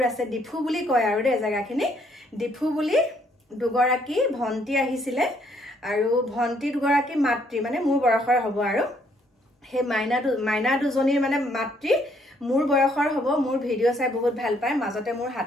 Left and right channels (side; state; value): both; normal; correlation 0.68